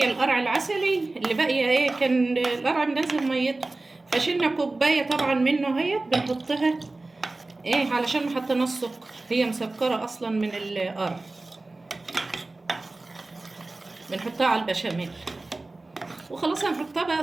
القرع العسلي اللي باقيه. كان القرع منزل ميته، فشلنا كوبايه طبعا منه اهيت بنحطها علشان ما حطيناش سكر، هي مسكره اصلا من القرع. بنحطها على البشاميل وخلاص. هنحطها بقى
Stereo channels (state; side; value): quieter; left; 3.1 dB